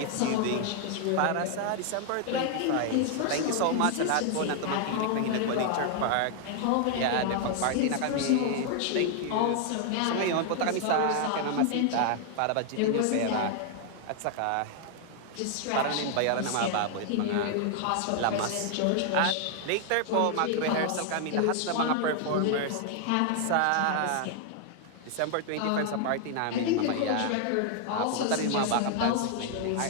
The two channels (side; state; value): both; different; correlation 0.00